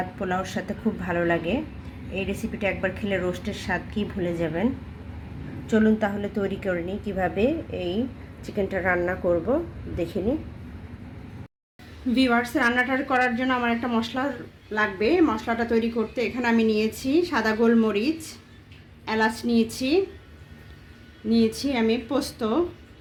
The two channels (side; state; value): both; identical; correlation 1.00